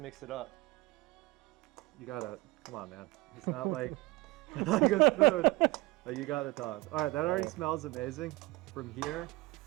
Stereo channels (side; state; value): left; quieter; 21.7 dB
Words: it up. You gotta, come on, man. It's not like, like a spoon. Like you got the tongs. All right, that already smells amazing. From here,